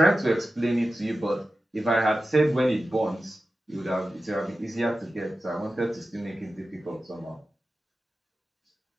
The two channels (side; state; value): both; normal; correlation 0.93